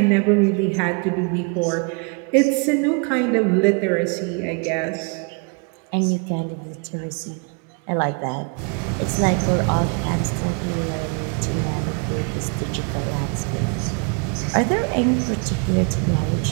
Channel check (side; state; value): left; quieter; 35.1 dB